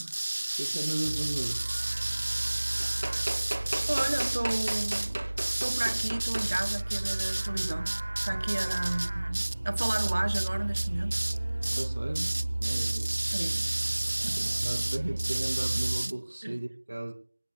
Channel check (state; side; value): inverted; both; correlation -1.00